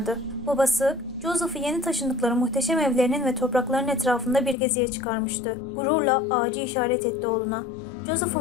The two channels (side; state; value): right; drops out; at 4.5 s